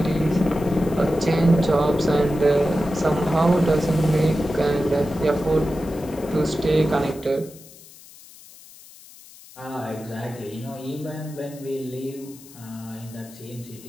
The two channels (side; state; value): left; noise; hiss, 21 dB below the sound